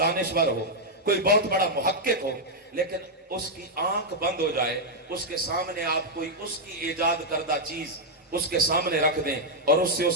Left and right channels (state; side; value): normal; both; correlation -0.03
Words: हो, कोई बहुत बड़ा मुहक्किक हो, लेकिन उसकी आंख बंद हो जाए, उसके सामने आप कोई उसकी इजाद करदा चीज उसके सामने रख दें और उससे